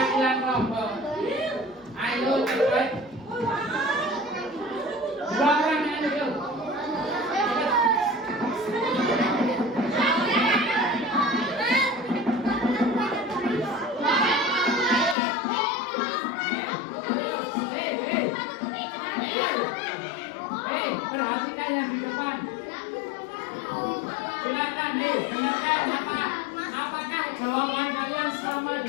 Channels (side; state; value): right; drops out; at 15.2 s